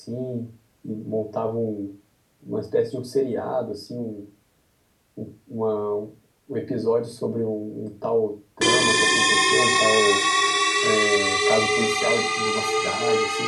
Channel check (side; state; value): both; identical; correlation 1.00